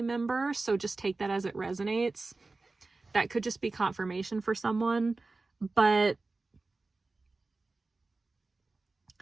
member. So just take that as it resonates. That could just be confirmation for someone. But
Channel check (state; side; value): quieter; left; 3.5 dB